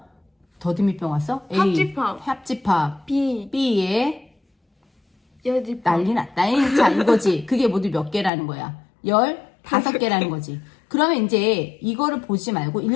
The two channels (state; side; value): drops out; right; at 8.3 s